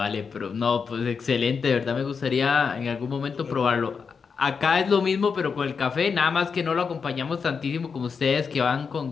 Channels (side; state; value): right; quieter; 5.7 dB